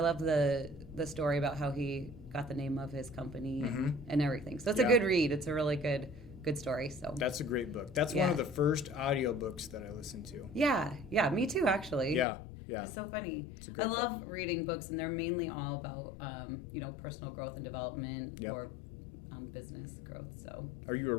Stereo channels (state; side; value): drops out; right; at 12.2 s